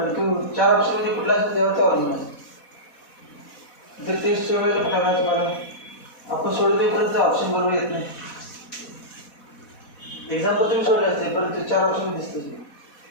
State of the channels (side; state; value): right; late; 4.1 ms